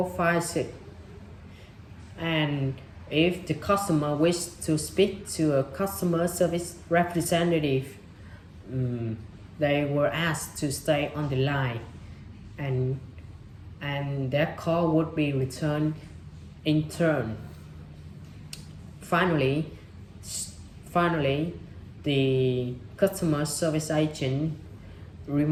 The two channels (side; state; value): both; identical; correlation 1.00